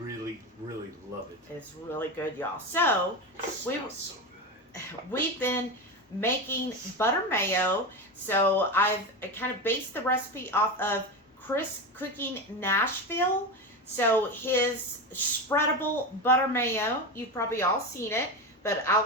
really love it. It's really good, y'all. So, So good. we've been making butter mayo. So I've kind of based the recipe off of ChrisCookingNashville. So his spreadable butter mayo, you've probably all seen it, but I'll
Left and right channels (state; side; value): normal; both; correlation 0.20